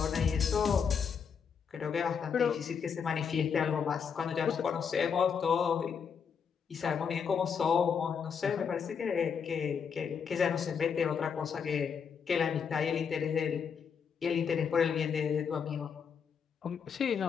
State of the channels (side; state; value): right; quieter; 6.7 dB